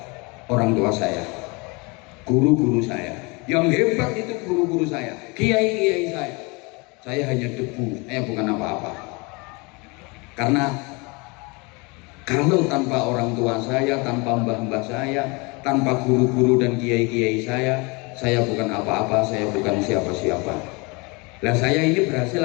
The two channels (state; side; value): quieter; right; 28.2 dB